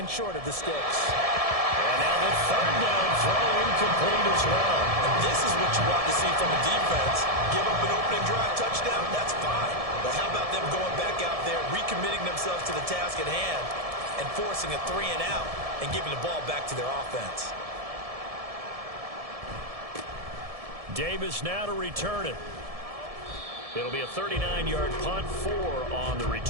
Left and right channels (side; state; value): left; late; 1.7 ms